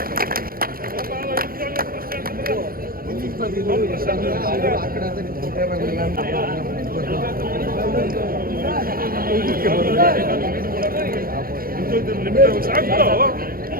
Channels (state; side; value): late; left; 0.42 ms